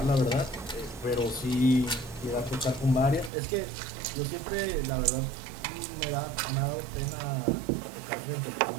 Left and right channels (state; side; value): drops out; left; at 3.3 s